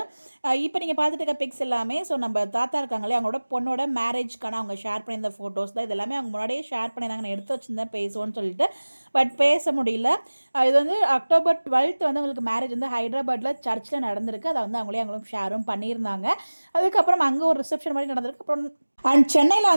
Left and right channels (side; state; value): both; inverted; correlation -1.00